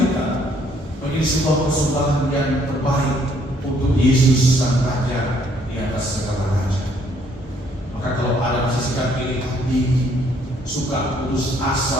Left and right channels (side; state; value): both; normal; correlation 0.66